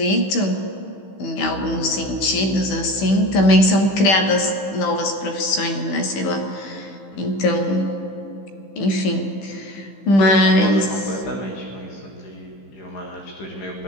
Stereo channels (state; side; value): late; right; 15 ms